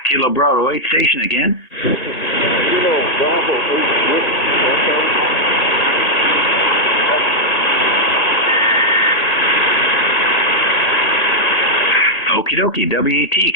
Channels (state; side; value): late; right; 1.6 ms